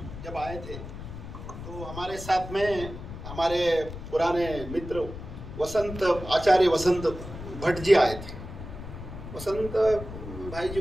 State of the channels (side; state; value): left; noise; rumble, 10 dB below the sound